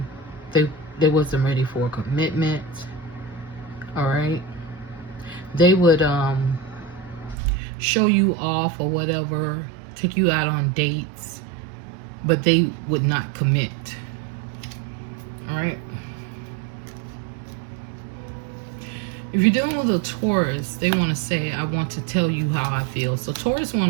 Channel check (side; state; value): left; drops out; at 7.4 s